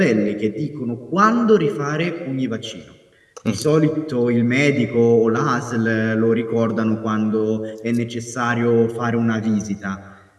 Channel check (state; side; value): identical; both; correlation 1.00